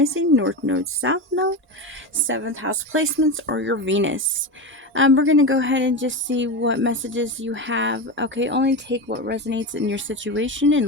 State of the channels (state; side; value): normal; both; correlation 0.20